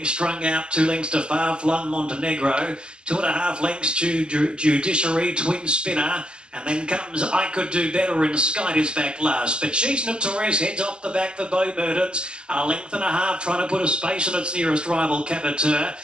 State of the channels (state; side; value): late; left; 0.049 ms